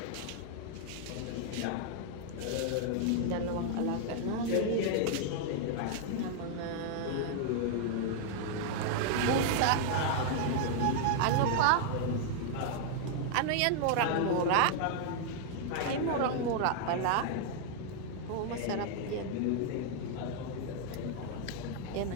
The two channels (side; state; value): both; different; correlation 0.00